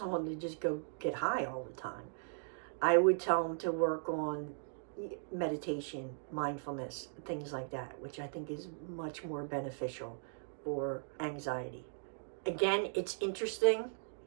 to just go get high all the time. I would tell them to work on meditation, mindfulness, things like that, which I think is much more beneficial for anxiety. Again, it's interesting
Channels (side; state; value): left; silent; digital silence